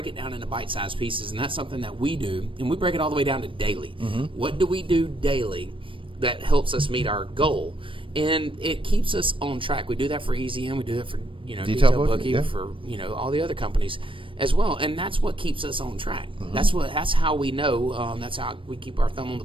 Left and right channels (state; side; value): late; left; 0.25 ms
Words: it down into bite-sized pieces, and that's something that we do. And we break it all the way down to daily. Mm-hmm. What do we do daily that helps us meet our goal? And it keeps us on track. We do that for Easy N. We do that for Detail Bookie, for all the other companies as well. And that's what keeps us on track. Mm-hmm. That's how we know. That's how we keep our thumb on the